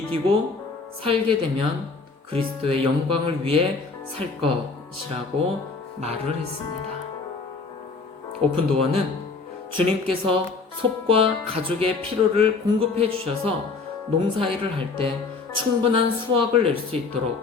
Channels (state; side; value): quieter; right; 4.3 dB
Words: 살게 되면 그리스도의 영광을 위해 살 것이라고 말을 했습니다. 오픈도어는 주님께서 솝과 가족의 필요를 공급해 주셔서 농사일을 할 때 충분한 수확을 낼 수